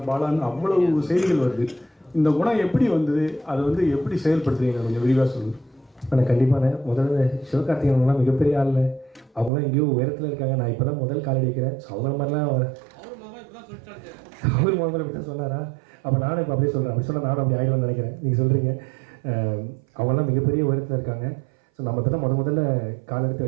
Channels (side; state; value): left; drops out; at 9.5 s